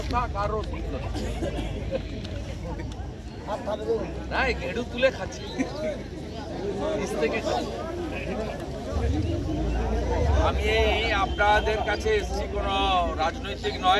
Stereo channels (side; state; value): both; identical; correlation 1.00